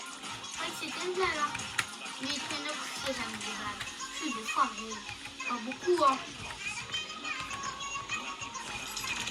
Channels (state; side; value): identical; both; correlation 1.00